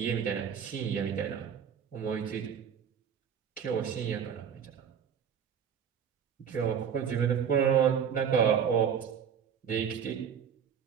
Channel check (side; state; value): left; quieter; 7.7 dB